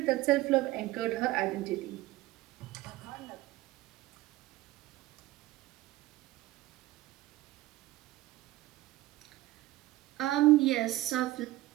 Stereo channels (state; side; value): quieter; left; 17.1 dB